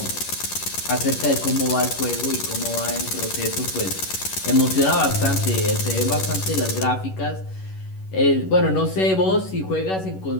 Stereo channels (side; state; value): right; late; 11 ms